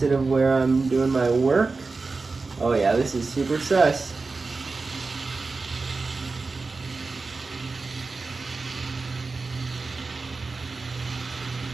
of where I'm doing my work. Oh yeah, this is super sus.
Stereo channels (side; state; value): left; quieter; 4.0 dB